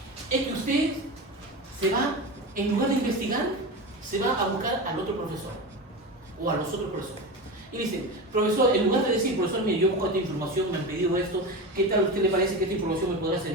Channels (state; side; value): normal; both; correlation 0.24